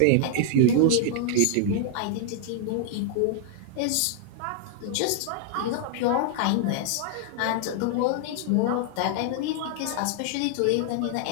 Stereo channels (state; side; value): different; both; correlation 0.00